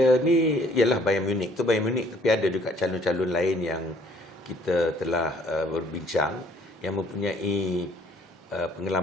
ni ialah Bayern Munich. Tu Bayern Munich, tapi ada juga calon-calon lain yang kita telah berbincang yang mempunyai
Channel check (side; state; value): both; normal; correlation 0.59